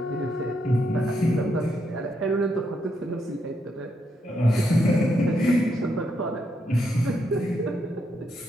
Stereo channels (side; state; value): both; normal; correlation 0.79